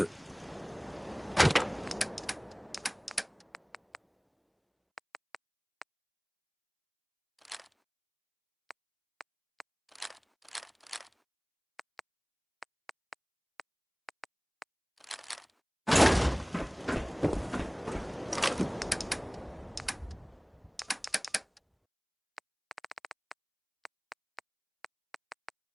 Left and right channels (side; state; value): both; identical; correlation 1.00